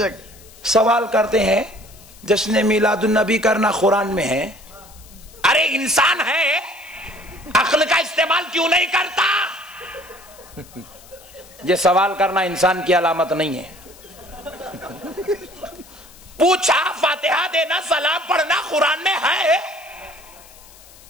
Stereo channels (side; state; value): left; noise; hiss, 23 dB below the sound